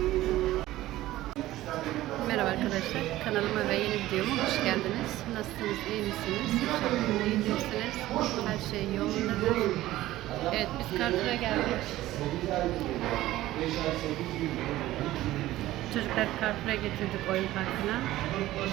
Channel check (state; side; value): quieter; left; 15.8 dB